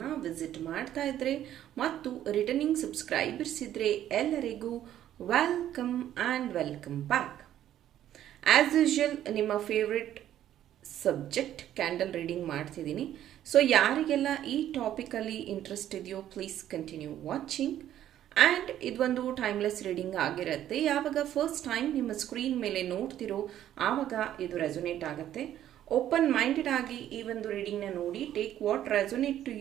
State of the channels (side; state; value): left; quieter; 11.7 dB